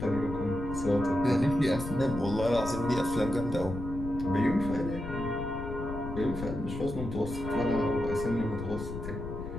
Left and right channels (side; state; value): left; noise; rumble, 8 dB below the sound